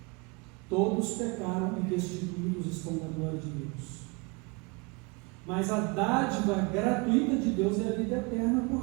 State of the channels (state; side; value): quieter; left; 28.2 dB